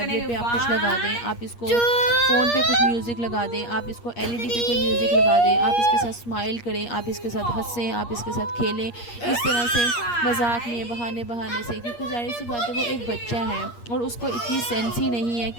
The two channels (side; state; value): right; late; 8.5 ms